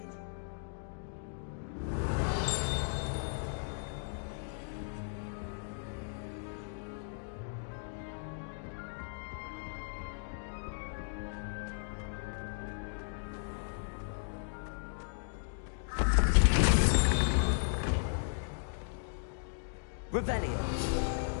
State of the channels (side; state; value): right; silent; digital silence